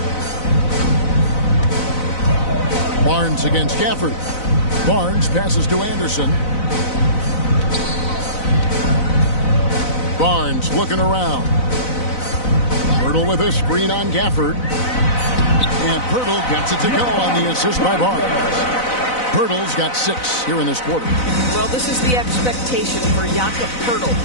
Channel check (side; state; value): right; late; 4.0 ms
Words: Barnes against Gafford. Barnes passes to Anderson. Barnes looking around. Pirtle with a screen on Gafford. And Pirtle gets it to go on the assist by Barnes. Pirtle's got 6 here in this quarter. Well, this is the expectation for Jakob Pirtle.